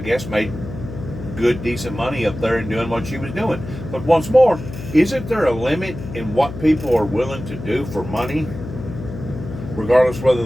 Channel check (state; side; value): noise; left; hum, 10 dB below the sound